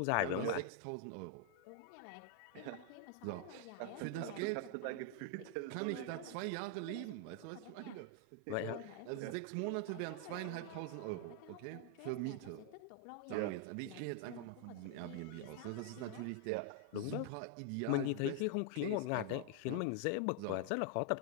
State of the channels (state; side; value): different; both; correlation 0.00